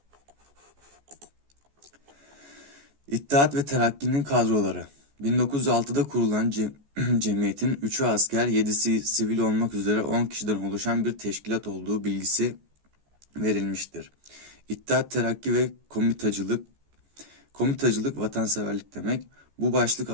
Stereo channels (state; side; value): late; left; 14 ms